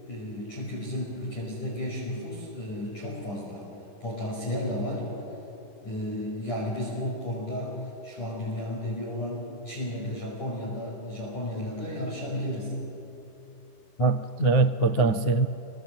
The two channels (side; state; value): right; late; 10 ms